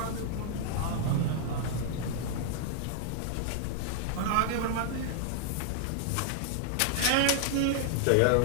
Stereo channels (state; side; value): different; both; correlation -0.01